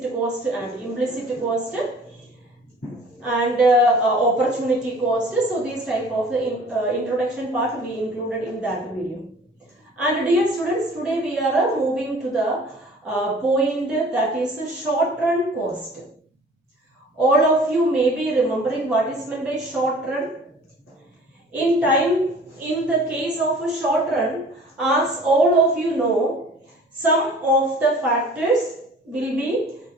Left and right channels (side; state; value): both; normal; correlation 0.48